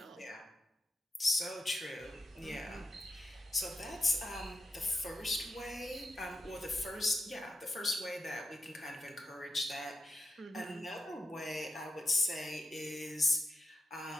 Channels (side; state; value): both; normal; correlation 0.88